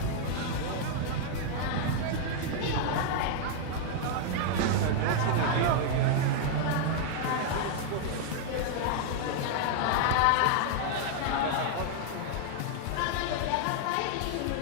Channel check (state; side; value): different; both; correlation 0.00